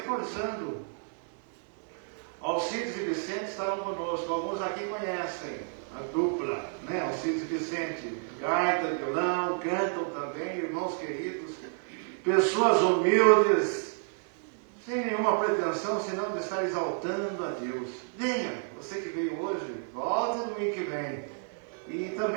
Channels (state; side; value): silent; left; 57 dB below the other